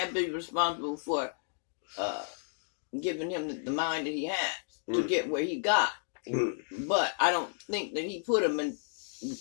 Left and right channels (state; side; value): silent; right; digital silence